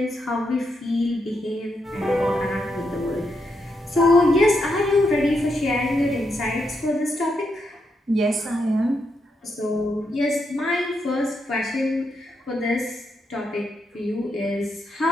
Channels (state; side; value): normal; both; correlation 0.81